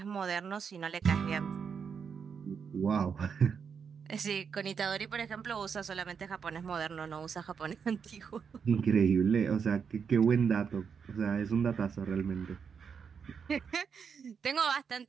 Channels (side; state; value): left; quieter; 6.5 dB